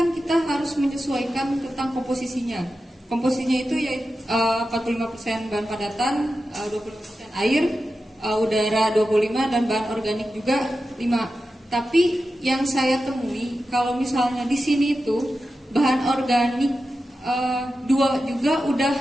kita harus menyesuaikan tentang komposisinya. Komposisinya itu yaitu 45% bahan padatan, 20% air, udara 25, dan bahan organik juga 5. Tapi yang saya temui kalau misalnya di sini itu bahan organik 2 juga udah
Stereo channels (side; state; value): both; normal; correlation 0.92